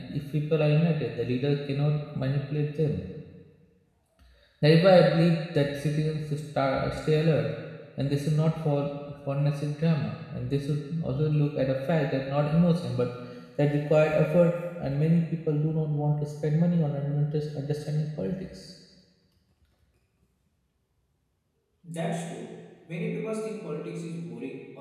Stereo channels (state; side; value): identical; both; correlation 1.00